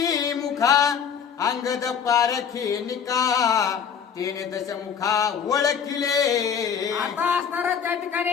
मुखा अंगद पारखी निका तेने दशमुखा ओळखिले. आता असणार त्या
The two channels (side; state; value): right; quieter; 7.3 dB